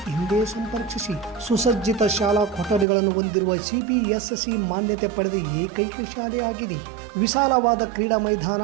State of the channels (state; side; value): drops out; left; at 2.9 s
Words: ಹಿಂದೆ ಸಂಪರ್ಕಿಸಿ. ಸುಸಜ್ಜಿತ ಶಾಲಾ ಕೊಠಡಿಗಳನ್ನು ಹೊಂದಿರುವ CBSE ಮಾನ್ಯತೆ ಪಡೆದ ಏಕೈಕ ಶಾಲೆಯಾಗಿದೆ. ವಿಶಾಲವಾದ ಕ್ರೀಡಾ ಮೈದಾನ,